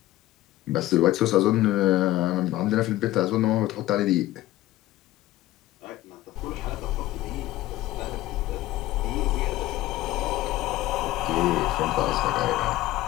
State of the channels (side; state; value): right; quieter; 15.9 dB